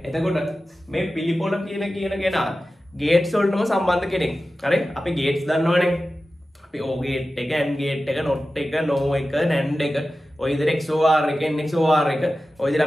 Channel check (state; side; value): normal; both; correlation 0.94